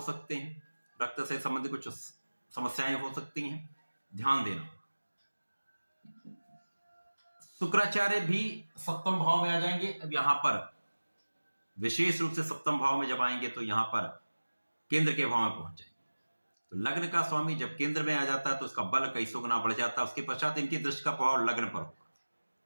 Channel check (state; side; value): inverted; both; correlation -1.00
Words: सकते हैं, रक्त से संबंधित कुछ समस्याएं हो सकती हैं, ध्यान देना। शुक्राचार्य भी सप्तम भाव में आ जाएंगे। अब यहां पर विशेष रूप से सप्तम भाव में जब आएंगे तो यहां पर केंद्र के भाव में पहुंच जाएंगे, तो लग्न का स्वामी जब केंद्र में आ जाता है तो उसका बल कई सौ गुना बढ़ जाता है। उसके पश्चात इनकी दृष्टि का प्रभाव लग्न पर होगा,